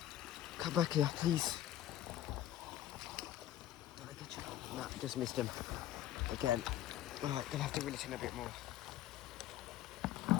Come back here, please. Did I get you? No, just missed him. Again. Alright, gonna have to reel it in a bit more.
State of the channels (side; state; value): right; quieter; 12.7 dB